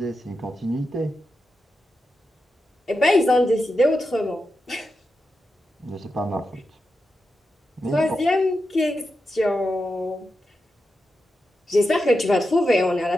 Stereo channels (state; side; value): normal; both; correlation 0.88